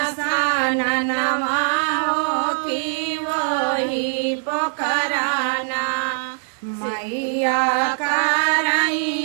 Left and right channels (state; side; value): silent; left; digital silence